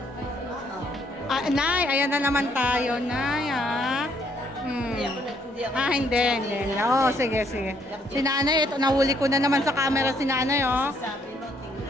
Ah, Nay, ayan na naman tayo, Nay, ah. Ah, hindi. Oo, sige. Si Nanay, ito, nahuli ko na naman sa camera si Nanay, oh.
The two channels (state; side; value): normal; both; correlation 0.69